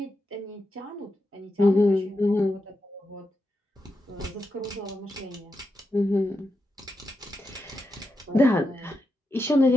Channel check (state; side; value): normal; both; correlation 0.87